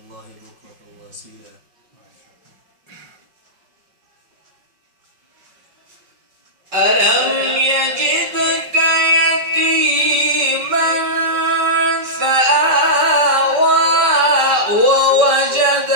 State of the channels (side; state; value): left; late; 5.2 ms